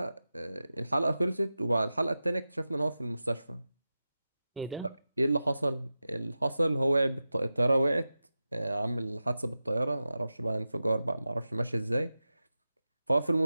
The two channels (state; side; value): inverted; both; correlation -0.93